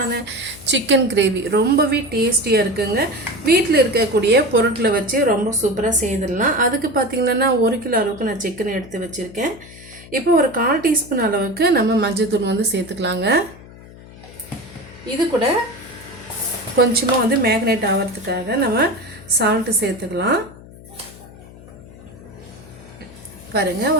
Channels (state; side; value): noise; left; hum, 19 dB below the sound